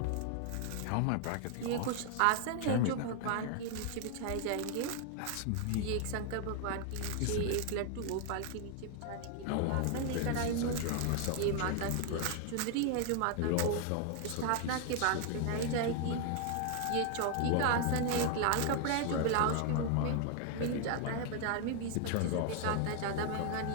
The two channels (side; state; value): both; different; correlation 0.00